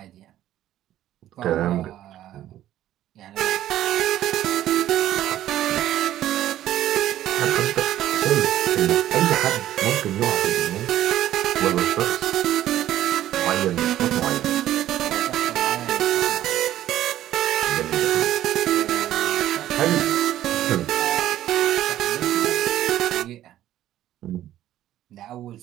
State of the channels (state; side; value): quieter; left; 12.9 dB